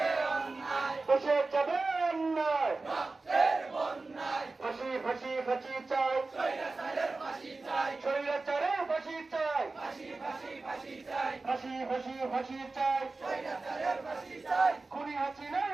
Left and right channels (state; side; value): quieter; left; 3.6 dB